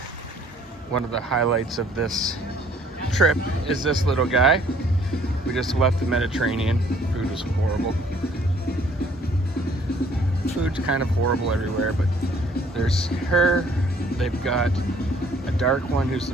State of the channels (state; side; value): normal; both; correlation 0.60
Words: One of the highlights of this trip is this little guy. We just left the Mediterranean. Food was horrible. Food's kind of horrible everywhere, but there's her. They've got a dark one who's the